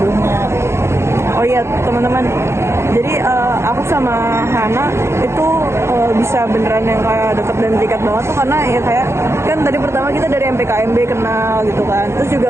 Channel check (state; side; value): late; left; 0.13 ms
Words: Oh iya teman-teman, jadi aku sama Hana itu bisa beneran yang kayak deket dan terikat banget tuh karena ya kayak kan tadi pertama kita dari MPKMB kenal gitu kan, terus juga